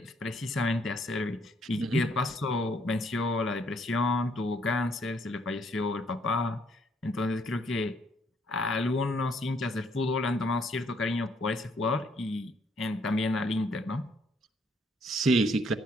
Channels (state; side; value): normal; both; correlation 0.68